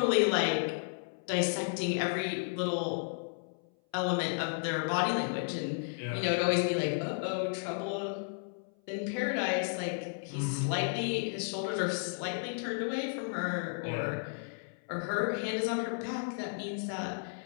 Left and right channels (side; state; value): right; silent; 56 dB below the other